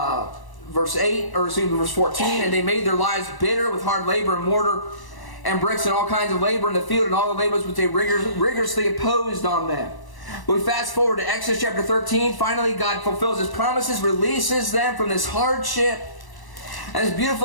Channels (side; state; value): right; late; 1.0 ms